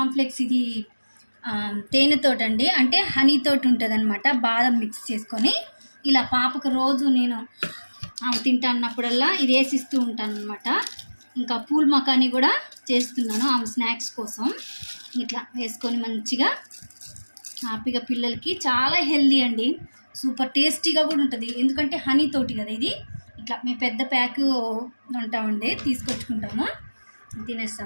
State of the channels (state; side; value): inverted; both; correlation -1.00